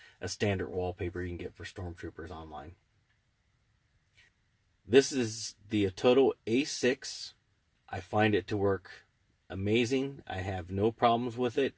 a standard wallpaper you can get for Stormtroopers online. This is the Atoto A6. I find it to work amazing. I have no problems with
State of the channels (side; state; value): both; identical; correlation 1.00